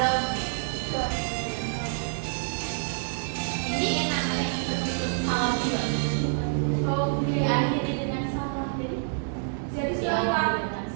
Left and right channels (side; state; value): left; silent; digital silence